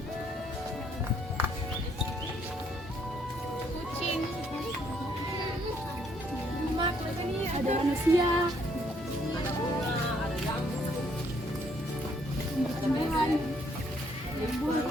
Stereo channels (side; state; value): both; normal; correlation 0.68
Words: Kucing. Ada manusia. Tumbuhan.